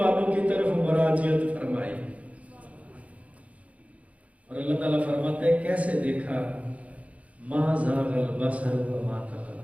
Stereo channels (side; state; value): left; late; 0.066 ms